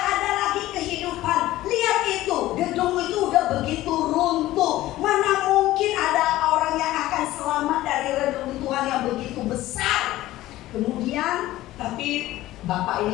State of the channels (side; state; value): right; quieter; 15.9 dB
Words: ada lagi kehidupan. Lihat itu, gedung itu udah begitu runtuh. Mana mungkin ada orang yang akan selamat dari reruntuhan yang begitu besar. Kemudian, tapi Bapak